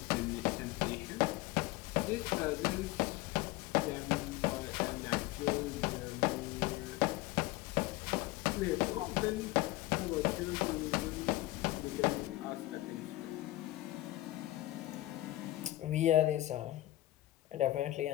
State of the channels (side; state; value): right; quieter; 17.2 dB